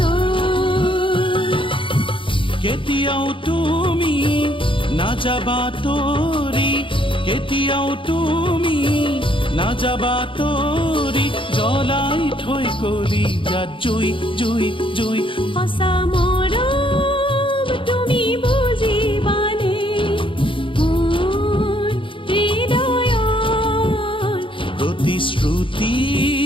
কেতিয়াও তুমি নাযাবা তৰি কেতিয়াও তুমি নাযাবা তৰি জ্বলাই থৈ কলি যাত জুই জুই জুই সঁচা মৰম তুমি বুজিবানে মোৰ হৃদয়ৰ প্ৰতিশ্ৰুতি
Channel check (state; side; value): late; right; 0.25 ms